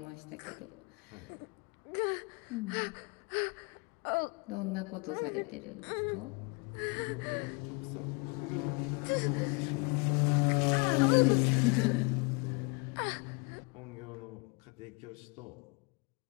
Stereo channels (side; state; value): right; quieter; 30.0 dB